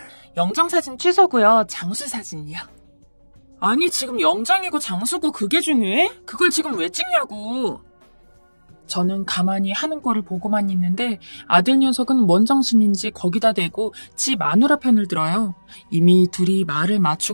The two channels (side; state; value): both; inverted; correlation -1.00